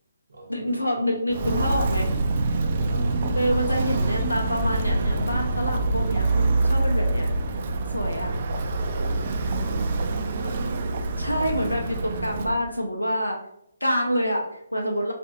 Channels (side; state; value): both; inverted; correlation -0.83